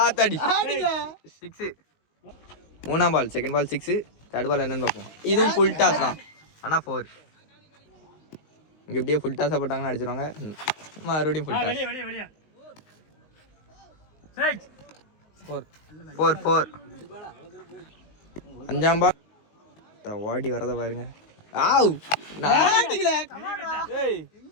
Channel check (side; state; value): right; late; 19 ms